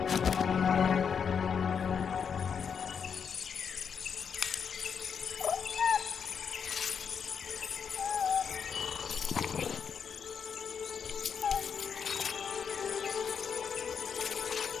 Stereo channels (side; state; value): right; quieter; 6.8 dB